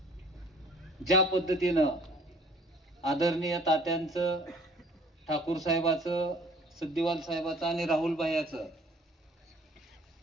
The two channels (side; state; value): both; normal; correlation 0.54